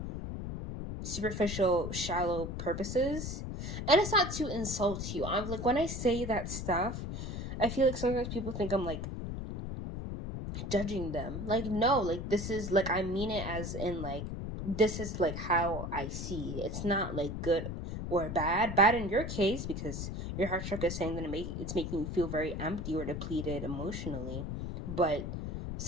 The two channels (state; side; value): noise; left; rumble, 5 dB below the sound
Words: superficial, shallow purposes. And it's not to insult you. I'm like, when I say that stuff, I feel like sometimes people think I'm like judging them. Like, no, like, this is like, I mean it as in like, this is like how I see. It's not like good or bad. Bad in your case because your heart chakra is saying that it's making you feel very empty or depleted emotionally. But